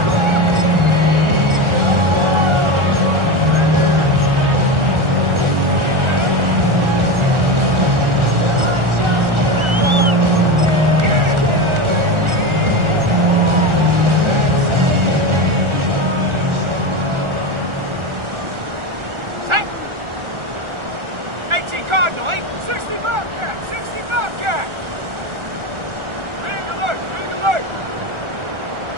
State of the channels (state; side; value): late; left; 1.4 ms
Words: Cardinal, 60 Bobcat, 60 Bobcat. Ring alert, ring alert.